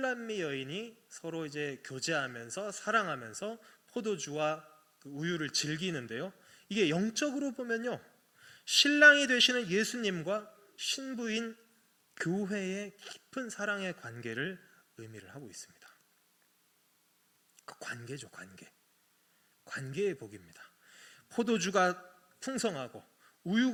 여인이 서로 이제 교제하면서 사랑하면서 포도주와 그 우유를 즐기는데요. 이게 영적으로 보면요, 신랑이 되시는 예수님과 신부인 교회의 깊은 사랑의 관계를 의미를 하고 있습니다. 그 관계죠, 관계의 복입니다. 포도주가 풍성하고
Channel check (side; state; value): both; identical; correlation 1.00